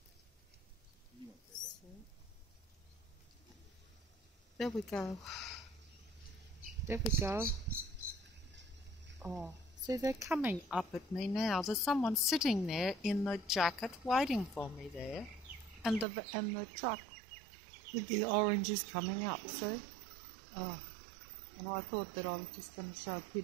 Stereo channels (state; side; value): drops out; left; at 16.1 s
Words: So, there we go. There we go. Oh. See, they're coming up at me now. There's someone sitting there in the jacket waiting for me there. And the truck with the oranges coming up, see? Oh, and I thought that I was just going to show